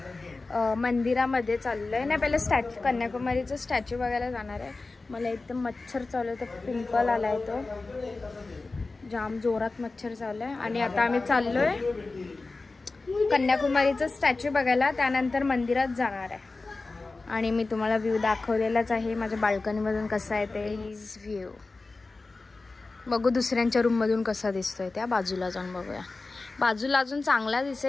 मंदिरामध्ये चाललोय. नाही पहिले स्टॅच्यू, कन्याकुमारीचं स्टॅच्यू बघायला जाणार आहे. मला एकदम मच्छर चालू आहे, तर पिंपल आलाय, तो जाम जोरात मच्छर चालू आहे. आणि आता आम्ही चाललोय कन्याकुमारीचं स्टॅच्यू बघायला, त्यानंतर मंदिरात जाणार आहे. आणि मी तुम्हाला व्ह्यू दाखवलेलाच आहे माझ्या बाल्कनीमधून कसा आहे ते. हिज व्ह्यू बघू दुसऱ्यांच्या रूममधून कसा दिसतोय. त्या बाजूला जाऊन बघूया. बाजूला अजून चांगला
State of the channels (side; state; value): right; quieter; 3.6 dB